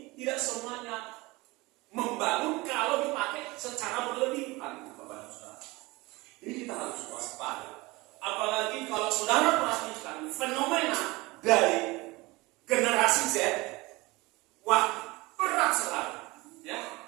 tidak semuanya membangun kalau dipakai secara berlebihan. Ini kita harus waspada. Apalagi kalau saudara perhatikan fenomena dari generasi Z, wah berat sekali, ya,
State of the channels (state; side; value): quieter; left; 22.4 dB